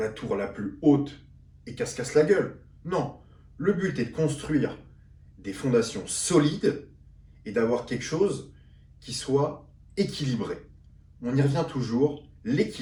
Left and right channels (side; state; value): both; identical; correlation 1.00